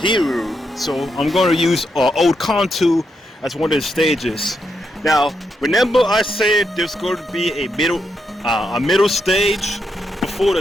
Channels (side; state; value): both; normal; correlation 0.82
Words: So I'm going to use Old Kanto as one of the stages. Now, remember I said there's going to be a middle stage before